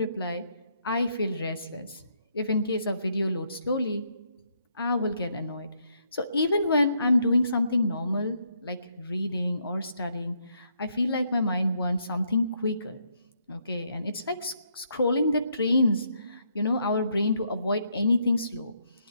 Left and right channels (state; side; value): inverted; both; correlation -0.74